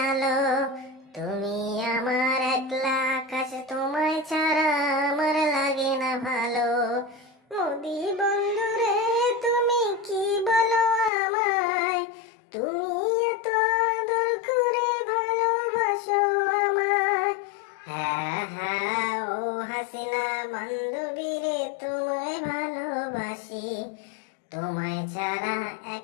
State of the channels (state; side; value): drops out; right; at 11.1 s